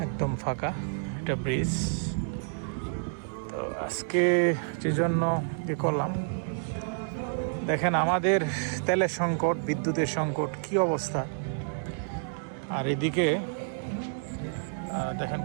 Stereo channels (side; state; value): left; silent; digital silence